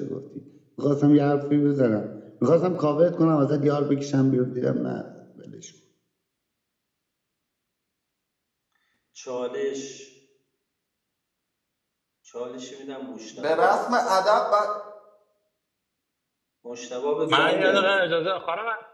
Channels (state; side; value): identical; both; correlation 1.00